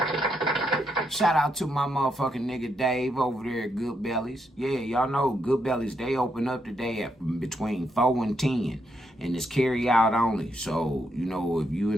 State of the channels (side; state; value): both; normal; correlation 0.79